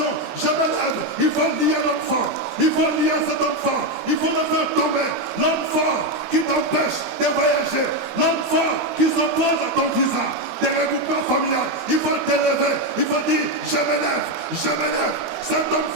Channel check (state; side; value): late; right; 12 ms